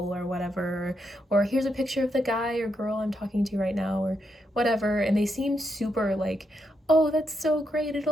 or whatever, or here's a picture of the guy or girl I'm talking to right now, or whatever, and they seem super like, oh, that's so great,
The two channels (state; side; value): normal; both; correlation 0.81